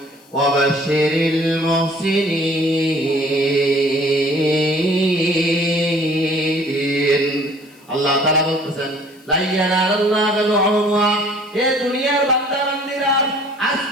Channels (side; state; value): left; noise; hiss, 29 dB below the sound